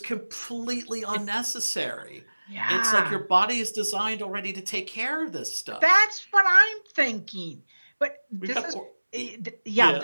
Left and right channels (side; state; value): both; inverted; correlation -1.00